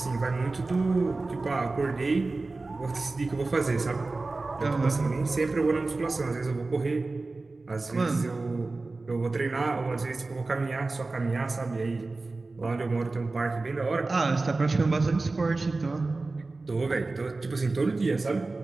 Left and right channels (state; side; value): quieter; left; 3.5 dB